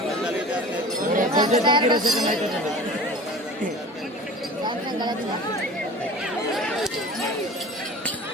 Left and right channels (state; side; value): normal; both; correlation 0.38